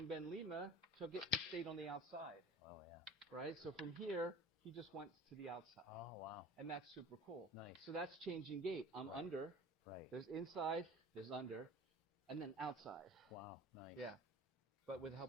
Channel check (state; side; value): normal; both; correlation 0.40